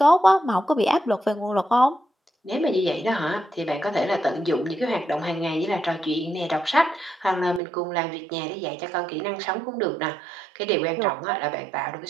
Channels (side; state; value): left; drops out; at 7.6 s